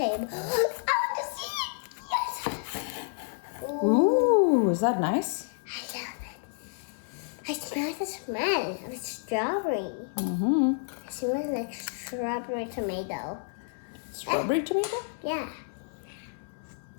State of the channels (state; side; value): silent; right; 58 dB below the other